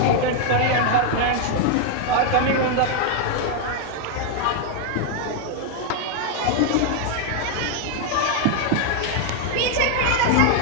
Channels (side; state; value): both; different; correlation 0.01